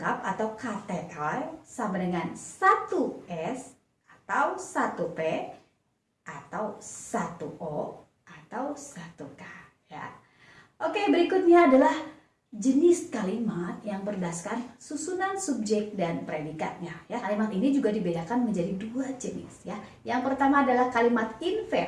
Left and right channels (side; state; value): both; identical; correlation 1.00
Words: atau KTL sama dengan 1S atau 1P atau 1O atau 1K ya. Oke, berikutnya adalah jenis kalimat yang berdasarkan susunan subjek dan predikatnya ya. Kalimat ini juga dibedakan menjadi 2 jenis ya. Yang pertama adalah kalimat